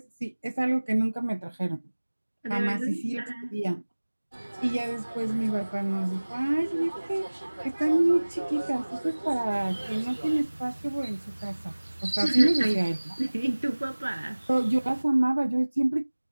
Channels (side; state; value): both; inverted; correlation -1.00